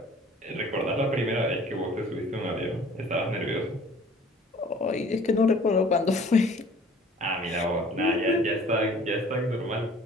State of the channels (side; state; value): both; normal; correlation 0.50